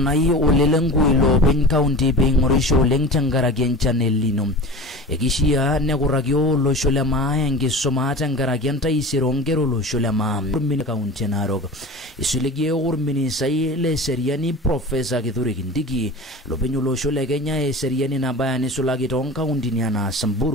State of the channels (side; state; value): both; normal; correlation 0.35